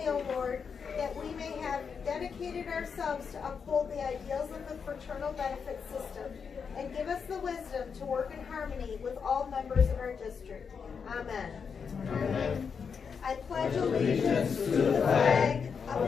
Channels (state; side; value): quieter; right; 6.1 dB